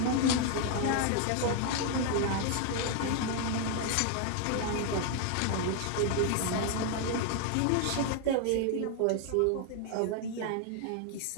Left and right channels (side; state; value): both; different; correlation 0.00